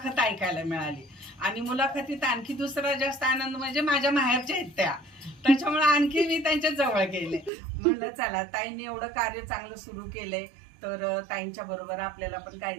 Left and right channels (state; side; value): drops out; left; at 7.5 s